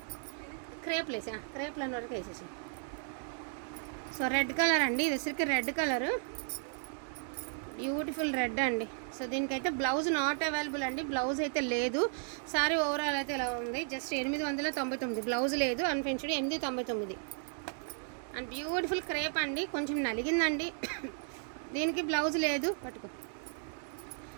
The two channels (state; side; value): silent; left; 55 dB below the other